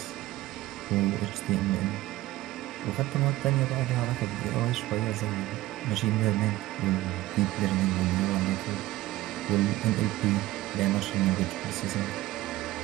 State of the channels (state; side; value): quieter; left; 16.9 dB